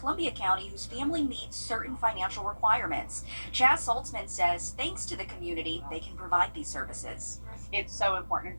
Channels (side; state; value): both; inverted; correlation -1.00